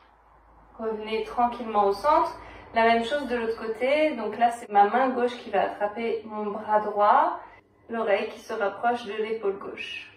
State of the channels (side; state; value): both; identical; correlation 1.00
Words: Revenez tranquillement au centre. La même chose de l'autre côté. Donc là, c'est ma main gauche qui va attraper mon bras droit, l'oreille qui se rapproche de l'épaule gauche.